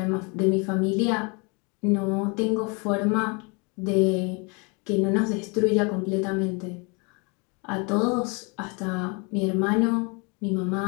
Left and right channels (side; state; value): right; quieter; 31.9 dB